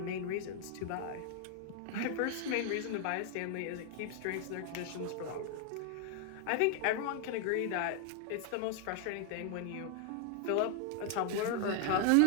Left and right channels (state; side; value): different; both; correlation 0.00